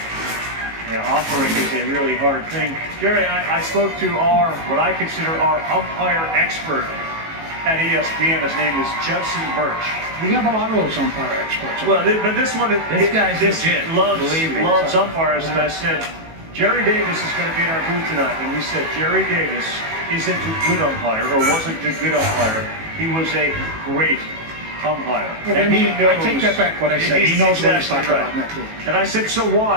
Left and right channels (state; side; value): late; left; 18 ms